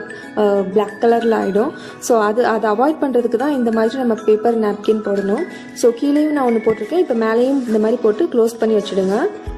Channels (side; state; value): both; identical; correlation 1.00